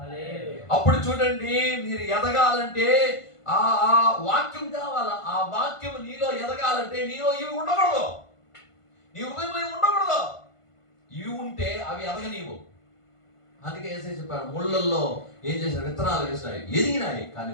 అప్పుడు చూడండి, మీరు ఎదగాలంటే ఆ వాక్యం కావాలా. ఆ వాక్యం నీలో ఎదగాలంటే నీలో ఇవి ఉండకూడదు, నీ హృదయంలో ఇవి ఉండకూడదు. ఇవి ఉంటే అవి ఎదగనీవు. అందుకే యేసయ్య చెప్పాడు, ముళ్ళల్లో ఏం చేశారు? విత్తనాలు వేసినాయి, ఎదిగినాయి, కానీ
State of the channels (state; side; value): late; right; 1.5 ms